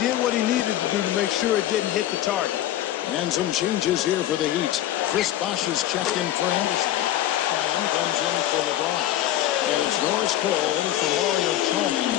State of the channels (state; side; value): quieter; right; 13.0 dB